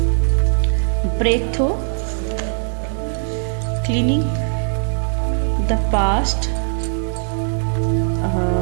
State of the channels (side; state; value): left; silent; digital silence